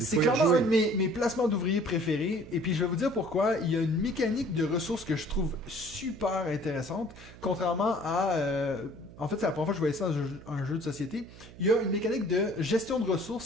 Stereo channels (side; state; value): right; noise; hum, 18 dB below the sound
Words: clairement un de mes placements d'ouvriers préférés. Et puis, je vais vous dire pourquoi. Il y a une mécanique de ressources que je trouve super intéressante. Contrairement à... en fait, c'est la première fois que je voyais ça dans un jeu de société. Il y a une mécanique de gestion de